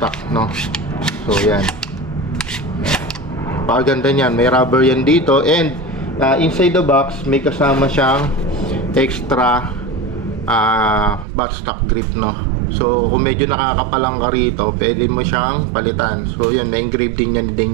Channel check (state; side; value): drops out; left; at 11.2 s